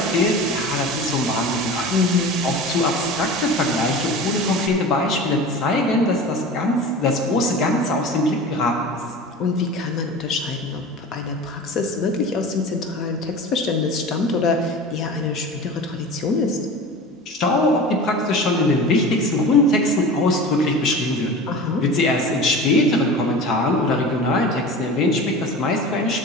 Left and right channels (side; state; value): both; normal; correlation 0.34